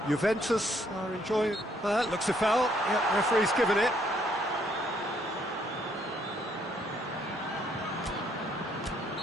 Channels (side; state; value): both; normal; correlation 0.68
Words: Juventus are enjoying... looks a foul. Yep, referee's given it.